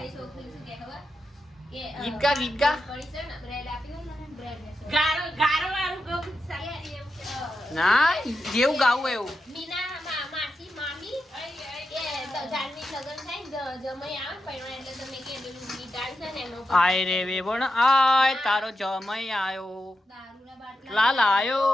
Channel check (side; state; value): both; normal; correlation 0.88